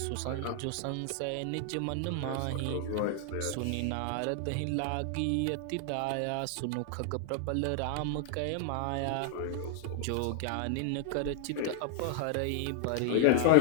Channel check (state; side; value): different; both; correlation -0.01